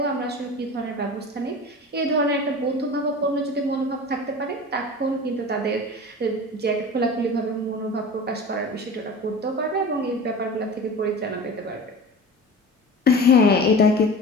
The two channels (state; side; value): normal; both; correlation 0.35